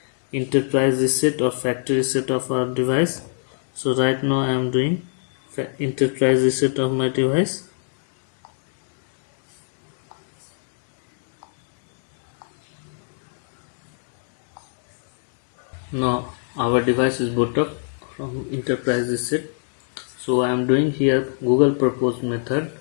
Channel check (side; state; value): right; silent; digital silence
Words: enterprise reset or factory reset of our device. So right now I am doing enterprise reset of my device. Now our device is boot up from enterprise reset. So I am doing here Google propose method,